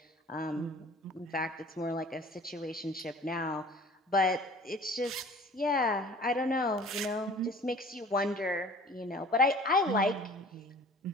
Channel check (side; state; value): both; normal; correlation 0.47